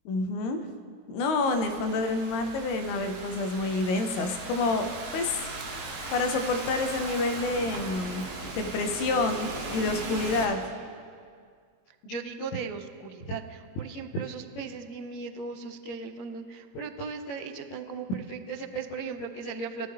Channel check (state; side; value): late; right; 22 ms